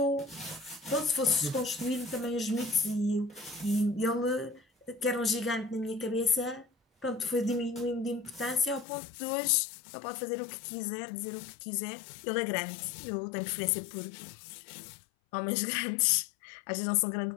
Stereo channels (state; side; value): drops out; right; at 8.8 s